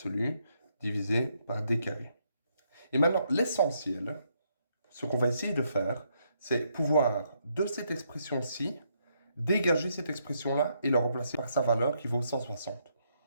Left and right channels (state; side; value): inverted; both; correlation -0.76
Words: divisé par d carré. Et maintenant, l'essentiel, ce qu'on va essayer de faire, c'est pouvoir, de cette expression-ci, dégager cette expression-là et la remplacer par sa valeur qui vaut 160.